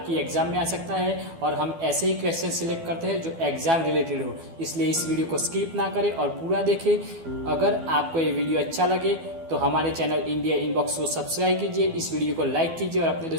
एग्जाम में आ सकता है और हम ऐसे ही क्वेश्चन सिलेक्ट करते हैं जो एग्जाम रिलेटेड हो। इसलिए इस वीडियो को स्किप ना करें और पूरा देखें। अगर आपको ये वीडियो अच्छा लगे तो हमारे चैनल इंडिया इनबॉक्स को सब्सक्राइब कीजिए, इस वीडियो को लाइक कीजिए और अपने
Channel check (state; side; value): late; left; 12 ms